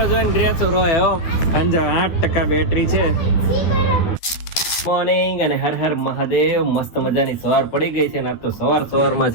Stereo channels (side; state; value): right; late; 12 ms